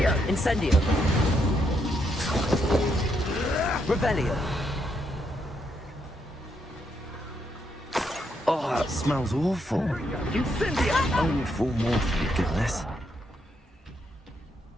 Incendio. Revelio. Oh, that smells awful. Incendio. Only 4 more, for goodness.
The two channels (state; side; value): normal; both; correlation 0.77